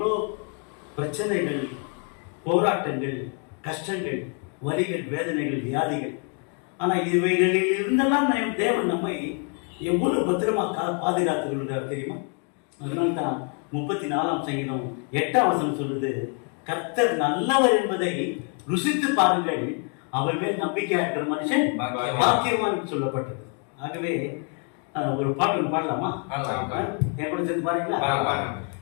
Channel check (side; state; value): right; quieter; 39.6 dB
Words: பிரச்சனைகள், போராட்டங்கள், கஷ்டங்கள், வலிகள், வேதனைகள், வியாதிகள். ஆனா இவைகளில் இருந்தெல்லாம் தேவன் நம்மை எவ்வளவு பத்திரமா பாதுகாத்துக் கொள்கிறார் தெரியுமா? அதனால்தான் 34ஆம் சங்கீதம் 8ஆம் வசனம் சொல்லுது, கர்த்தர் நல்லவர் என்பதை ருசித்து பாருங்கள், அவர் மேல் நம்பிக்கையா இருக்கிற மனுஷன் பாக்கியவான் சொல்லப்பட்டது. ஆகவே ஒரு பாட்டு பாடலாமா? என் கூட சேர்ந்து பாருங்களா?